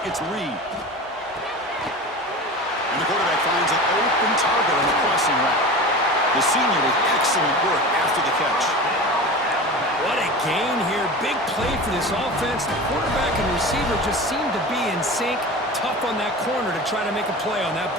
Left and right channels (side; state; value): both; normal; correlation 0.32